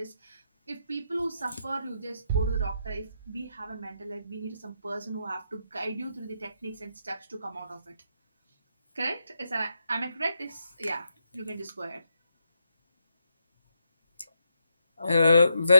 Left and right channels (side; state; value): both; inverted; correlation -0.82